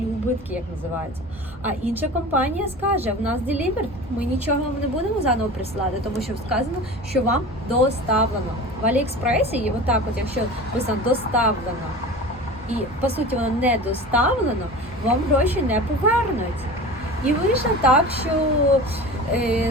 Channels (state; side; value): normal; both; correlation 0.35